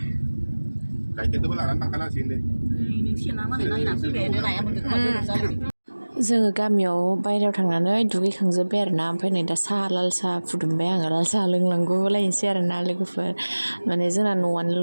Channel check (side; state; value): both; inverted; correlation -1.00